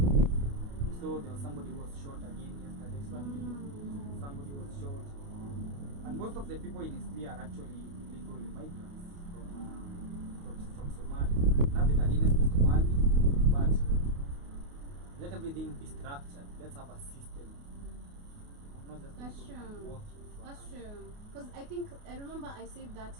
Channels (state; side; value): late; left; 28 ms